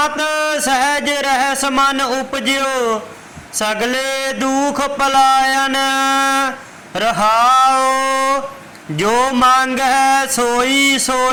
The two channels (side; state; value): both; identical; correlation 1.00